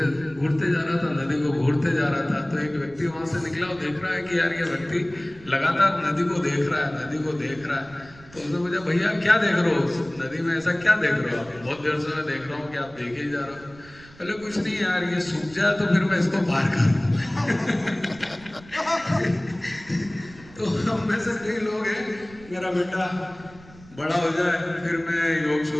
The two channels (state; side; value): noise; right; rumble, 22 dB below the sound